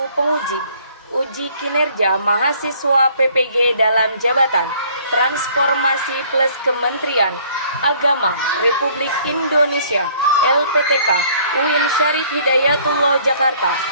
penguji uji kinerja mahasiswa PPG dalam jabatan Transformasi Plus Kementerian Agama Republik Indonesia LPTK UIN Syarif Hidayatullah Jakarta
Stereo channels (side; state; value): both; inverted; correlation -0.58